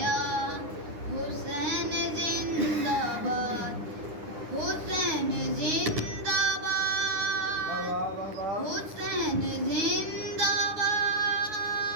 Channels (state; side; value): late; left; 9.9 ms